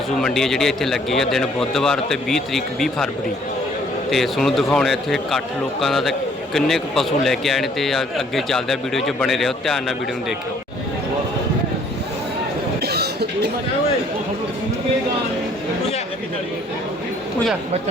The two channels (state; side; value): normal; both; correlation 0.61